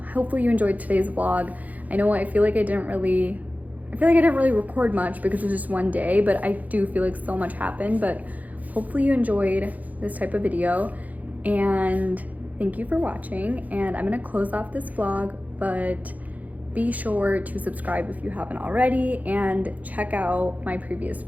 hopefully you enjoyed today's vlog. I know I feel like I didn't really record much because it was just one day, but I do feel like so much happened. But hopefully you enjoyed this type of video, and thank you for watching. And I'm gonna close off this vlog, but be sure to subscribe if you haven't already and check out my previous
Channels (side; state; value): left; late; 0.078 ms